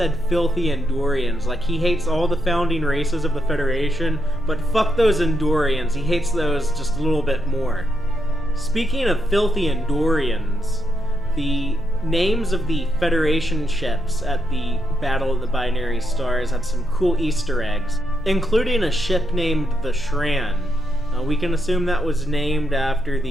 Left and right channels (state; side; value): normal; both; correlation 0.82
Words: filthy Andorians, like he hates all the founding races of the Federation, but fuck those Andorians, he hates those just a little bit more. Speaking of filthy Andorians, the names of the Federation ships at the Battle of the Binary Stars had some cool Easter eggs, including a ship named the Shran. We can assume that was named after